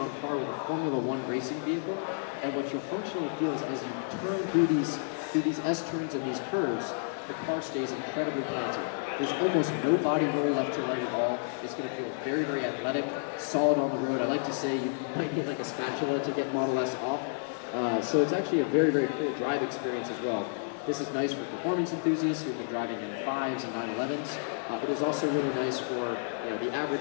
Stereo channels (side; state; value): right; silent; digital silence